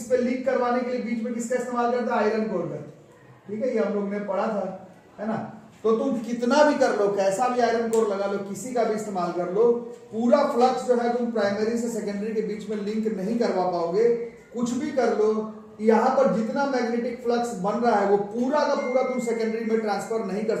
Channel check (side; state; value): both; identical; correlation 1.00